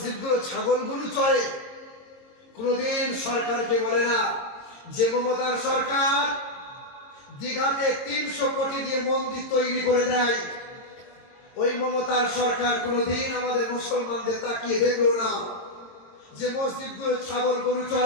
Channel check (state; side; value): late; right; 22 ms